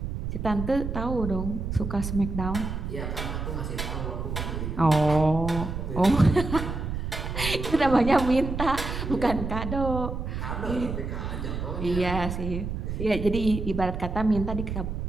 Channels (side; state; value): right; noise; rumble, 4 dB below the sound